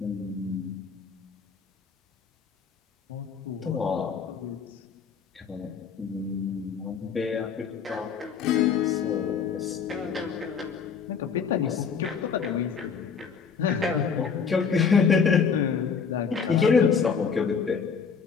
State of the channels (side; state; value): right; quieter; 6.2 dB